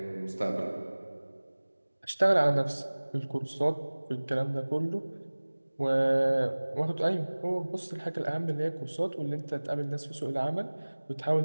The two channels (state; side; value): inverted; both; correlation -1.00